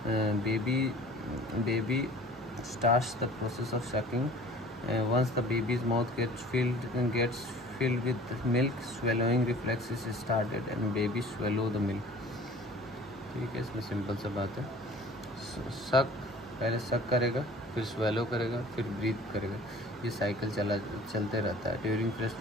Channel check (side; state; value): both; normal; correlation 0.47